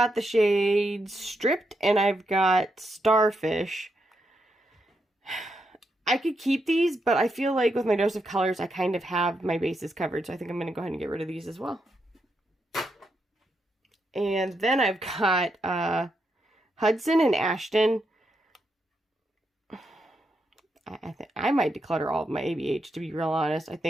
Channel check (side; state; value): both; normal; correlation 0.82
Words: the shade Stripped, and I've got Starfish. I could keep these, but I feel like with my dose of colors, I kind of have my bases covered, so I think I'm going to go ahead and get rid of these as well. And then I've got Hudson and Ashton. I think I might declutter all of my ABH, to be real honest. I